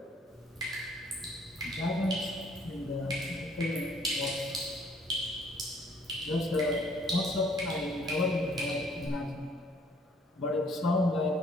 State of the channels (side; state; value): both; normal; correlation 0.61